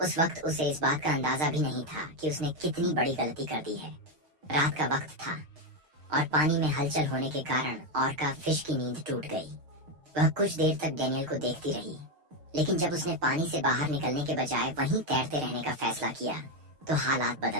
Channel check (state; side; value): late; left; 6.5 ms